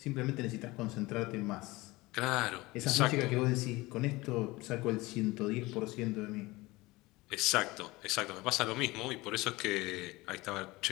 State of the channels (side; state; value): right; quieter; 21.2 dB